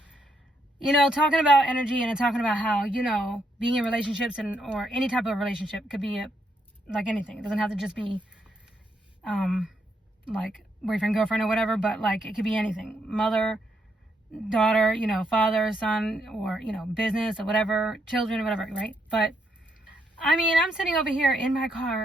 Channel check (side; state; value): both; normal; correlation 0.76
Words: You know, talking about energy and talking about how, you know, being in relationships or any type of relationship could be like anything. It doesn't have to just be, like boyfriend, girlfriend or whatever, but like it could be anything. Mother, daughter, you know, father, son, or, you know, business or whatever, children or whatever, right? But I mean, I'm sitting over here in my